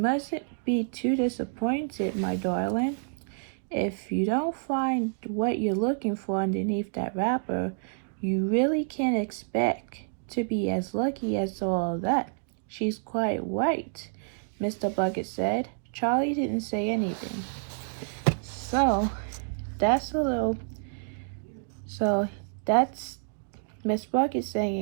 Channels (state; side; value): silent; left; digital silence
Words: be too disappointed, my darling. If you don't find what you're looking for underneath that wrapper, you really can't expect to be as lucky as all that. She's quite right, Mr. Bucket said. Charlie didn't say anything. So, that's a little... So, that's Miss Bucket